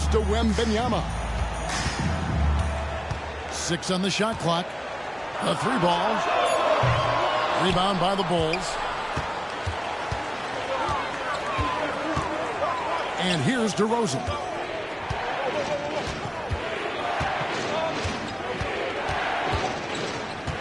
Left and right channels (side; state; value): both; identical; correlation 1.00